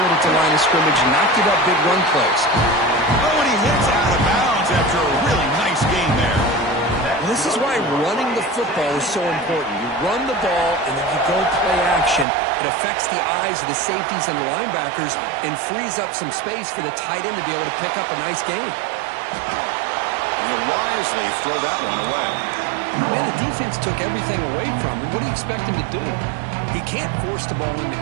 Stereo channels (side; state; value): left; drops out; at 12.2 s